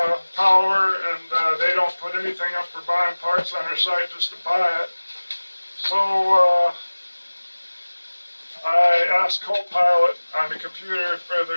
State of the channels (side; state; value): both; inverted; correlation -1.00